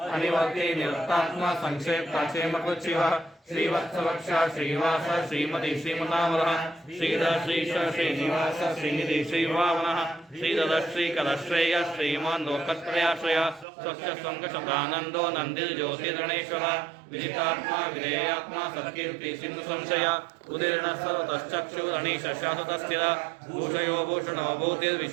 अनिवर्ति निरस्तात्मा संक्षेप्ता क्षेमकृच्छिवः श्रीवत्सवक्षा श्रीवास श्रीमती श्रीमनामरः श्रीधर श्रीश श्रीनिवास श्रीनिधि श्रीभावनः श्रीधर श्रीकलश्रेय श्रीमान् लोकत्रयाश्रय स्वच्छ संकशतानन्दो नन्दिर्ज्योतिर्गणेश्वरः विदितात्मा विधेयात्मा सत्कीर्ति सिंधु संशय उदीर्ण सर्वतश्चक्षुरणीश शाश्वतस्थिर भूषयो भूषणो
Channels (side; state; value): left; drops out; at 13.7 s